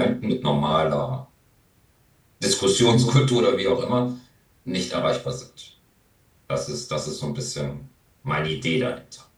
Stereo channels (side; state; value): both; identical; correlation 1.00